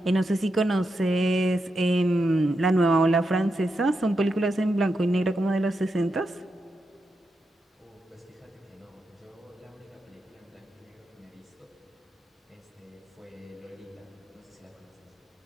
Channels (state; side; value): normal; both; correlation 0.86